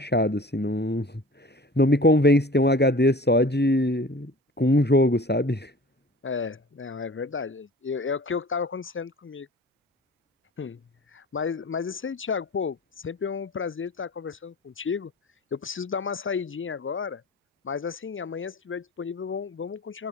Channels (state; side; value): normal; both; correlation 0.41